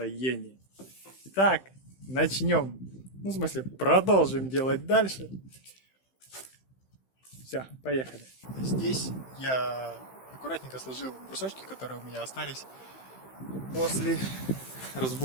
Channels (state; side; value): late; right; 15 ms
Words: Итак, начнем. Ну, в смысле, продолжим делать дальше. Все, поехали. Здесь я аккуратненько сложил брусочки, которые у меня остались после